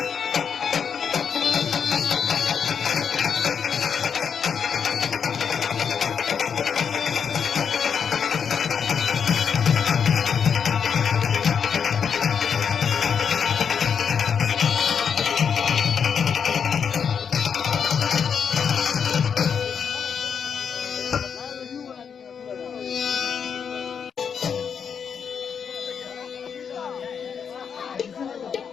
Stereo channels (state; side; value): quieter; right; 7.0 dB